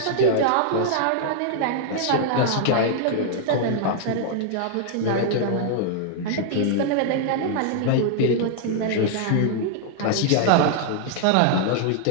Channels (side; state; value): both; different; correlation -0.01